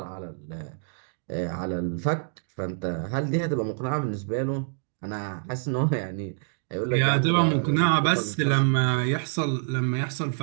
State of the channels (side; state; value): left; silent; 60 dB below the other